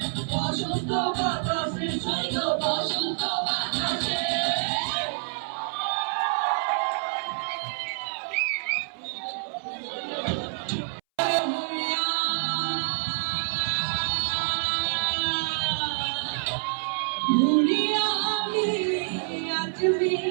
বসন্ত বাতাসে সৈব বসন্ত বাতাসে भूलिया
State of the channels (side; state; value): left; silent; 60 dB below the other